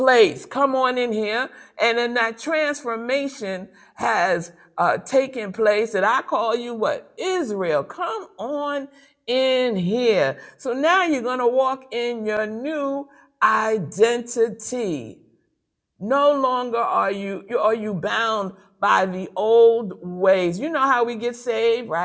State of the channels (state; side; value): identical; both; correlation 1.00